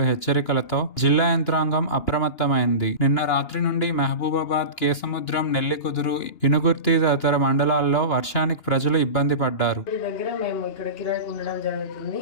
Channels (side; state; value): right; late; 2.8 ms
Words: హెచ్చరికలతో జిల్లా యంత్రాంగం అప్రమత్తమైంది. నిన్న రాత్రి నుండి మహబూబాబాద్, కేసముద్రం, నెల్లికుదురు, ఇనుగుర్తి తదితర మండలాల్లో వర్షానికి ప్రజలు ఇబ్బంది పడ్డారు.